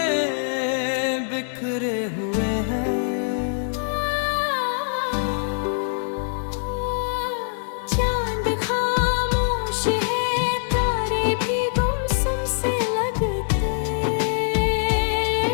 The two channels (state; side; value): silent; right; digital silence